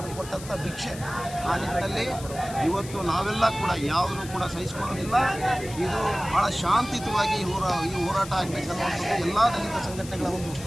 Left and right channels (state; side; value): noise; left; hiss, 14 dB below the sound